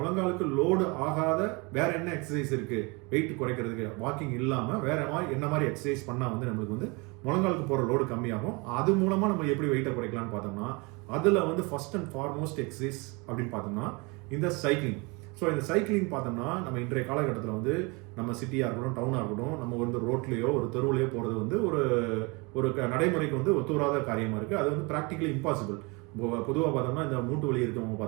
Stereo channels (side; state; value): left; quieter; 28.4 dB